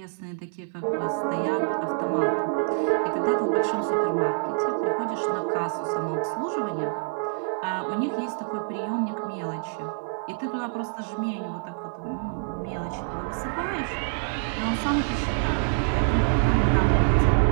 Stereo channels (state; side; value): silent; left; digital silence